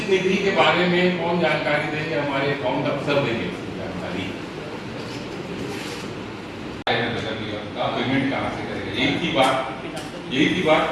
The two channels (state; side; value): identical; both; correlation 1.00